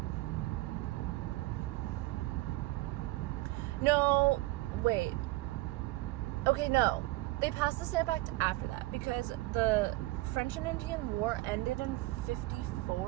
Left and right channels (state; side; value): quieter; left; 19.8 dB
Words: No, wait. Okay, no. They passed the Stamp Act after that, because the French and Indian War ended in